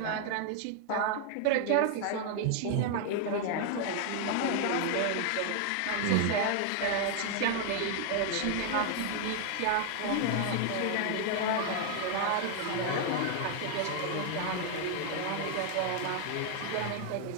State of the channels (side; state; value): both; different; correlation 0.00